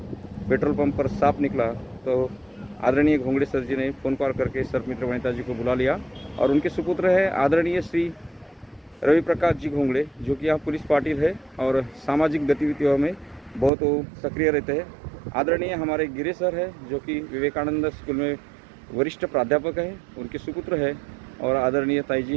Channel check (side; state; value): left; drops out; at 13.7 s